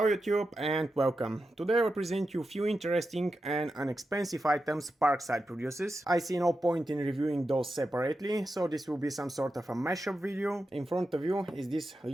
YouTube and welcome. Today I will present you a few interesting and inexpensive items Parkside produces. I see no point in reviewing those separately, so this will be some sort of a mashup video. In front of you is this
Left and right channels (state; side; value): normal; both; correlation 0.89